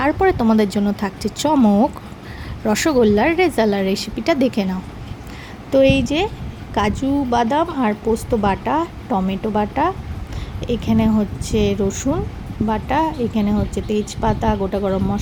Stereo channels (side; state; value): both; identical; correlation 1.00